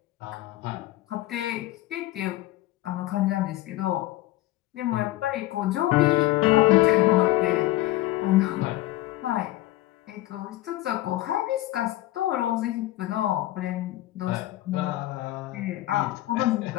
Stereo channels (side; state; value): right; quieter; 16.3 dB